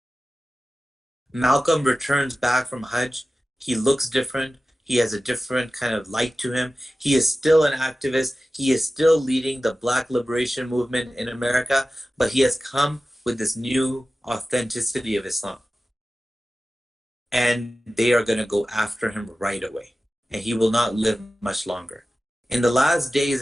Malcolm returns back from Hajj. He looks different. He has a different kind of light to him. He is still an activist. He is still leading the Black liberation movement in America, but he has come with this new authenticity of Islam. And they are going to go after him right away. And he will not live much longer. In the last days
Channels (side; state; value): both; normal; correlation 0.95